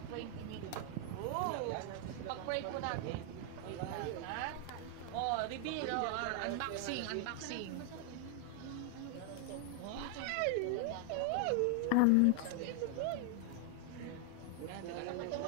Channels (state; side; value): different; both; correlation 0.00